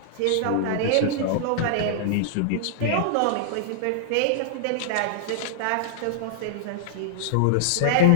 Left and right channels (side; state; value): both; different; correlation -0.01